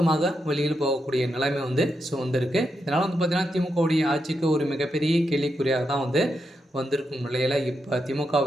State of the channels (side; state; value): both; normal; correlation 0.84